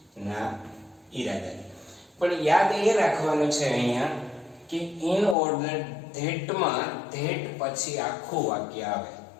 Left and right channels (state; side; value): drops out; right; at 5.4 s